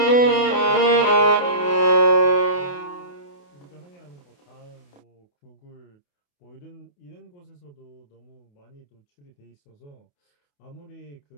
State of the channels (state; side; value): late; right; 28 ms